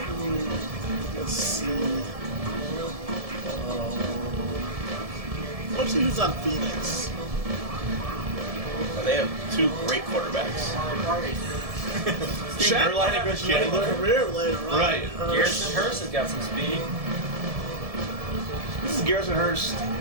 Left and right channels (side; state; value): left; late; 1.7 ms